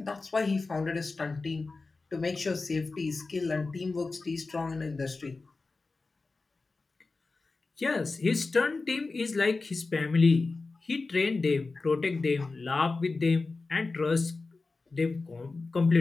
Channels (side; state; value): right; quieter; 3.8 dB